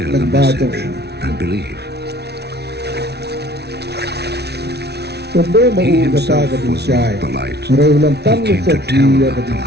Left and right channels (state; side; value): late; left; 0.49 ms